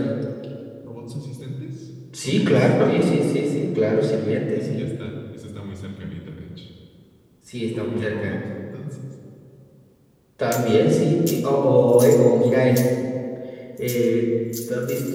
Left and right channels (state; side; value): identical; both; correlation 1.00